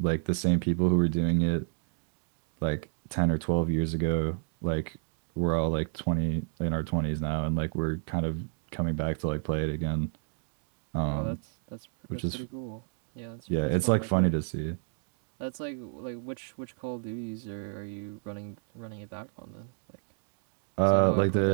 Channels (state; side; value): silent; left; digital silence